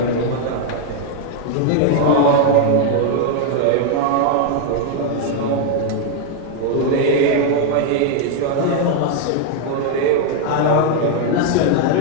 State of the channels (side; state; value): both; different; correlation 0.00